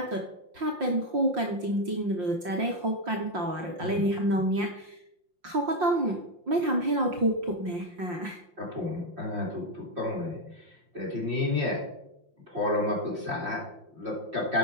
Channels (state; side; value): late; left; 5.7 ms